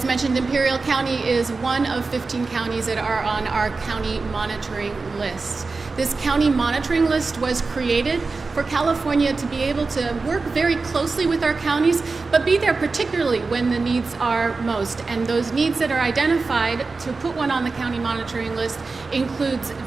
mentioned, Imperial County is one of 15 counties that are on our county monitoring list. This county monitoring list was created for California to be able to work very closely with our counties, but be there particularly when the needs are most. And those needs that are identified to put one on the county monitoring list includes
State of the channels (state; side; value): quieter; left; 4.0 dB